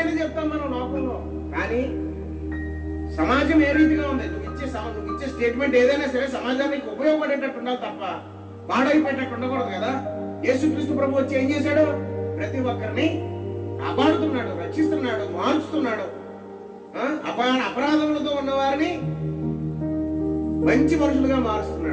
చెప్తాం మనం లోకంలో, కానీ సమాజం ఏ రీతిగా ఉంది? నువ్వు ఇచ్చే స్టేట్మెంట్ ఏదైనా సరే సమాజానికి ఉపయోగపడేటట్టు ఉండాలి తప్ప పాడైపోయేటట్టు ఉండకూడదు కదా. యేసుక్రీస్తు ప్రభు వచ్చి ఏం చేశాడు? ప్రతి ఒక్కరిని కాపాడుతున్నాడు, రక్షిస్తున్నాడు, మార్చుతున్నాడు. అపరాధములతో ఉన్న వారిని మంచి మనుషులుగా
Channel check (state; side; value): identical; both; correlation 1.00